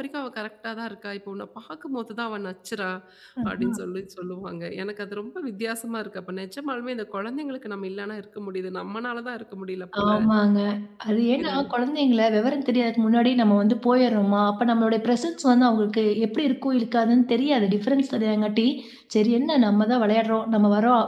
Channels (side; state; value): both; identical; correlation 1.00